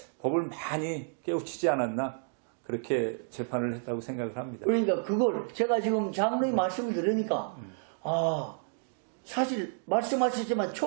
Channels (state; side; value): silent; left; digital silence